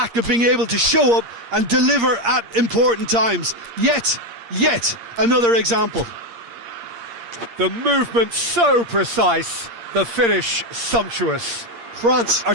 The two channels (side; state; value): left; late; 8.6 ms